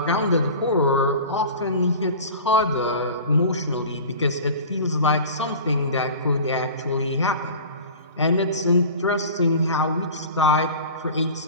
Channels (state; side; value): inverted; both; correlation -0.38